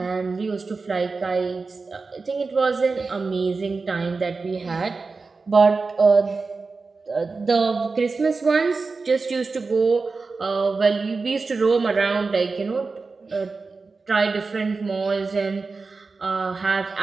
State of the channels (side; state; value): left; quieter; 4.2 dB